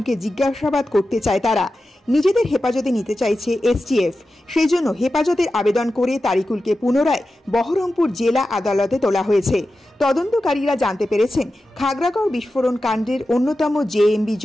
জিজ্ঞাসাবাদ করতে চায় তারা। নিজেদের হেফাজতে নিতে চাইছে এসটিএফ। সেই জন্য হেফাজতের আবেদন করে তারিকুলকে পুনরায় বহরমপুর জেলা আদালতে তোলা হয়েছে। তদন্তকারীরা জানতে পেরেছেন, খাগড়াগড় বিস্ফোরণ কাণ্ডের অন্যতম জেএমবি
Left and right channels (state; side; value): normal; both; correlation 0.93